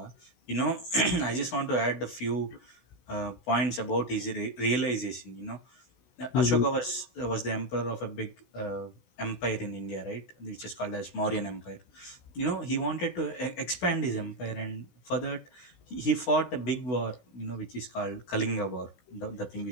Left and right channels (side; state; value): right; late; 16 ms